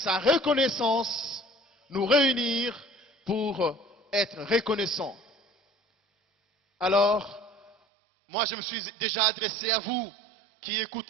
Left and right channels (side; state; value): left; drops out; at 7.8 s